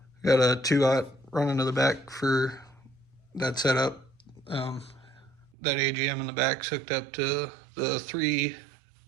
Got a 2-aught running to the back for that setup. That AGM in the back's hooked up to the 3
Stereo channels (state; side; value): drops out; left; at 5.5 s